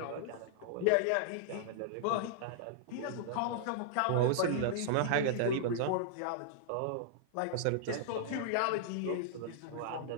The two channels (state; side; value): different; both; correlation -0.01